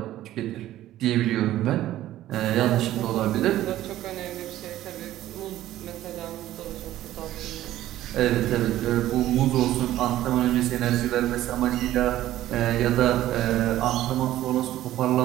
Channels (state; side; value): quieter; left; 14.0 dB